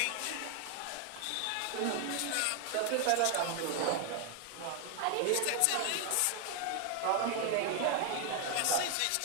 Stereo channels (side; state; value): both; different; correlation 0.00